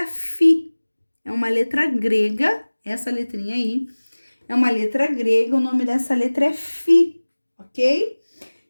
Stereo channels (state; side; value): inverted; both; correlation -1.00